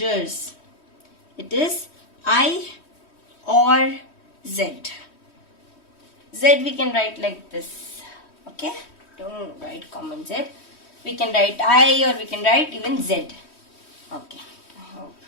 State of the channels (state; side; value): late; right; 3.1 ms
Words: it is I or Z. Z we can write like this. Okay, don't write common Z. We can write I or we can write even Z. Okay, I hope